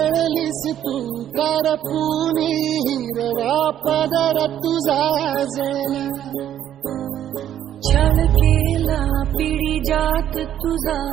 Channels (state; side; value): quieter; left; 10.8 dB